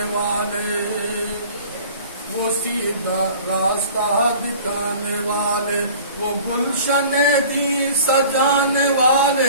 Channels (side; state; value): both; inverted; correlation -0.45